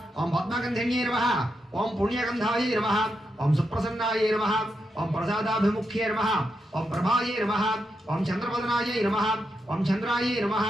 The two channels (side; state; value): both; normal; correlation 0.85